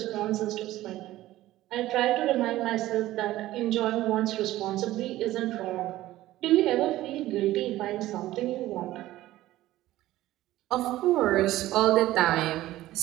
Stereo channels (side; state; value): left; quieter; 15.6 dB